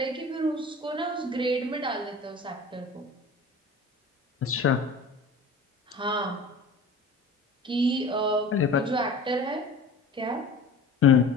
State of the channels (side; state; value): right; quieter; 3.0 dB